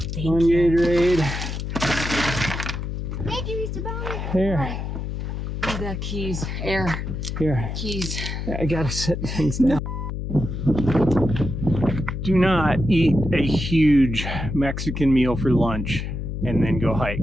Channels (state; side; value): noise; left; hum, 5 dB below the sound